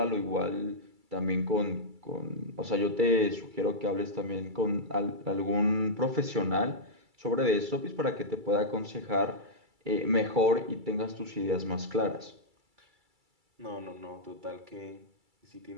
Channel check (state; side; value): late; left; 2.3 ms